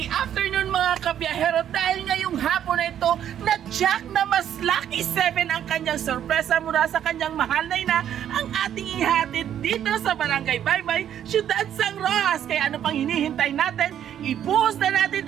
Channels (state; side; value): quieter; left; 10.1 dB